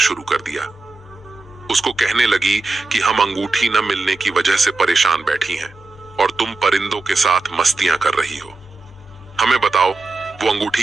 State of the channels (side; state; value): left; quieter; 3.4 dB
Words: कर दिया। उसको कहने लगी कि हम अंगूठी न मिलने की वजह से परेशान बैठी हैं और तुम परिंदों के साथ मस्तियां कर रही हो। हमें बताओ वो अंगूठी